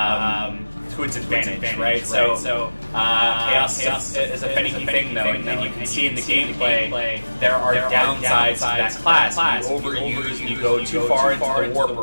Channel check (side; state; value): both; inverted; correlation -1.00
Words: its advantage, right? So chaos is a finicky thing, though, and you can see in the gameplay there are downsides to that class. You overuse, you go too far into the